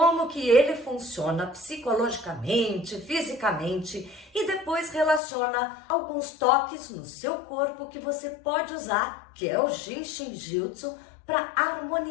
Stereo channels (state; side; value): drops out; right; at 5.2 s